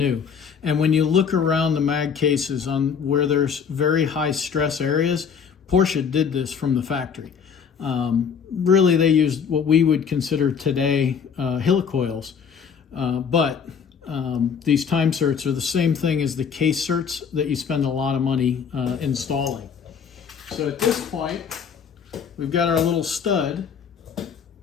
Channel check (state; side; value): quieter; right; 6.8 dB